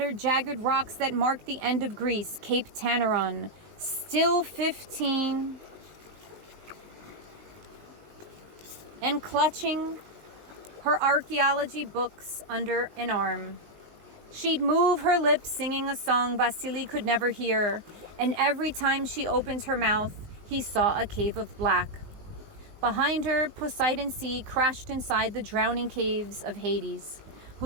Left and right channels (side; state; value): left; late; 19 ms